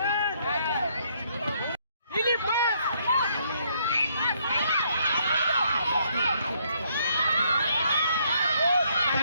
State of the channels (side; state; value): both; inverted; correlation -0.70